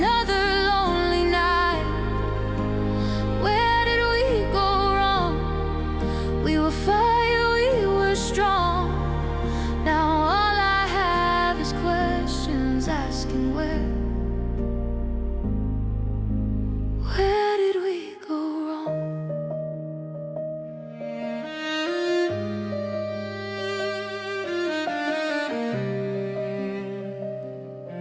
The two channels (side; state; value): both; identical; correlation 1.00